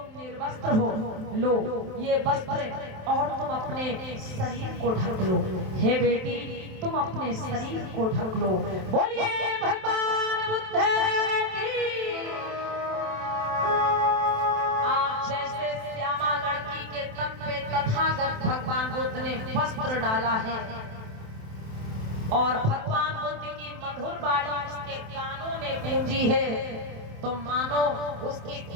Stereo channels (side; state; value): left; late; 27 ms